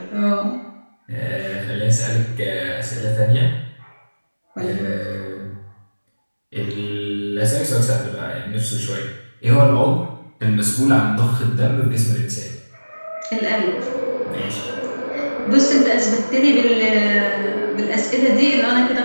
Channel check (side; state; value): both; inverted; correlation -1.00